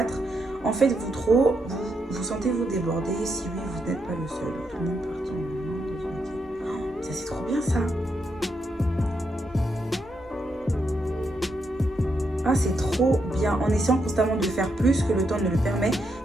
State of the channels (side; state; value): both; normal; correlation 0.81